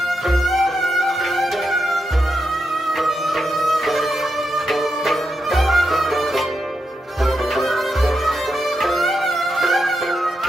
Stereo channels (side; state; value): both; normal; correlation 0.85